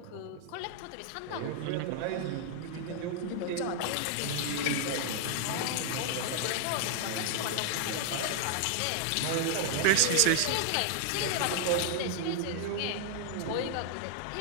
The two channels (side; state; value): both; different; correlation 0.00